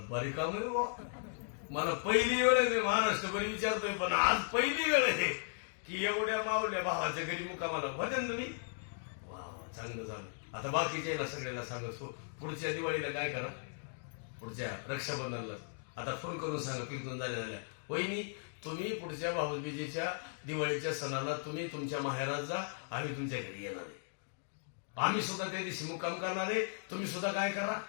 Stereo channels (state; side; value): silent; right; digital silence